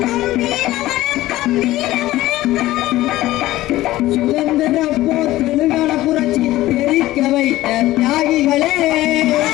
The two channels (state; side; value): quieter; right; 16.3 dB